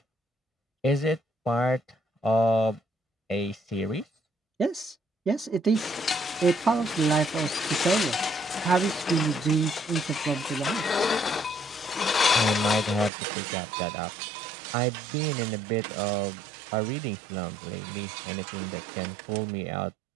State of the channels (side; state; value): left; drops out; at 13.1 s